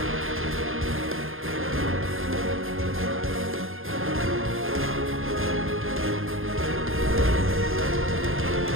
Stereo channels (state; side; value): late; left; 0.60 ms